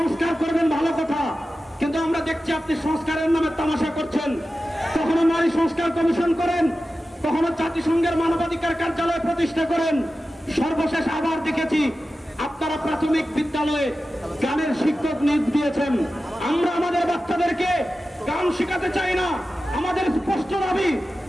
করবেন ভালো কথা, কিন্তু আমরা দেখছি আপনি সংস্কারের নামে তামাশা করছেন। কখনো নারী সংস্কার কমিশন করেন, কখনো জাতিসংঘের মানবাধিকার কার্যালয় প্রতিষ্ঠা করেন। সর্বশেষ আবার দেখেছি আপনারা প্রাথমিক বিদ্যালয়ে গানের শিক্ষক নিয়োগ দিয়েছেন। আমরা আমাদের বাচ্চাদেরকে গান শেখাতে চাই না। আমাদের স্পষ্ট দাবি,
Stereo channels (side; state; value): both; normal; correlation 0.93